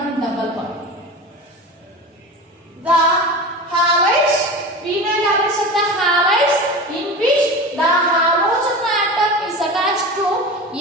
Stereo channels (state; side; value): normal; both; correlation 0.30